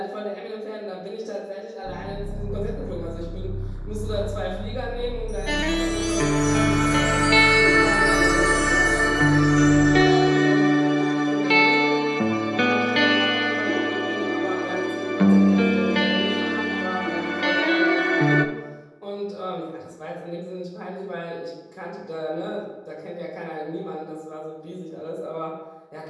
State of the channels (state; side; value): identical; both; correlation 1.00